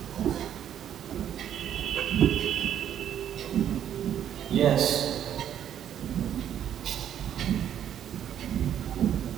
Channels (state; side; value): quieter; left; 10.0 dB